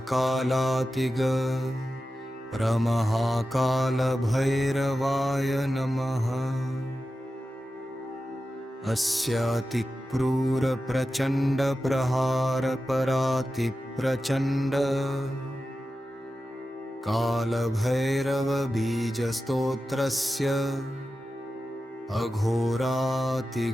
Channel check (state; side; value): normal; both; correlation 0.92